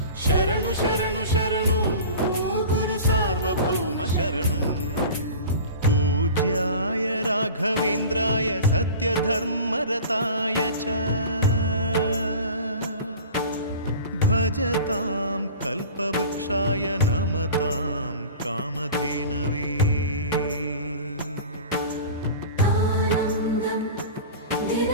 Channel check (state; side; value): inverted; both; correlation -0.38